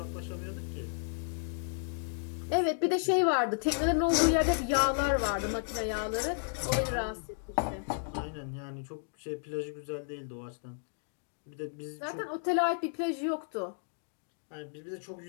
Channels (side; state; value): right; silent; digital silence